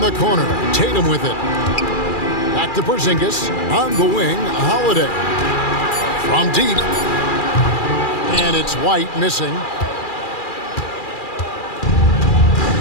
the corner. Tatum with it. Back to Porzingis on the wing. Holiday from deep. And it's White missing.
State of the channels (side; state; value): right; late; 2.4 ms